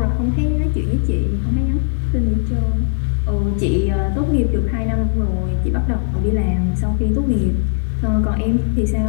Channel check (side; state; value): right; silent; digital silence